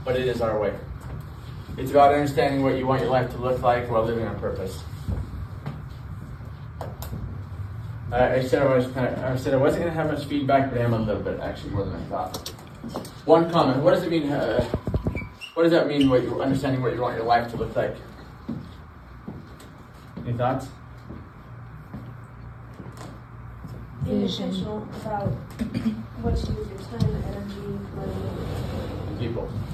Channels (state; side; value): identical; both; correlation 1.00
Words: but it is our way. It's about understanding what you want your life to look like while living on purpose. I said I wasn't going to have much feedback, but I am a little bit, actually, more than I thought. One comment: what does it mean? What does that mean? What you're understanding what you want your life to look like? Any thoughts? Being intentional about what you do with your time, energy, money, People.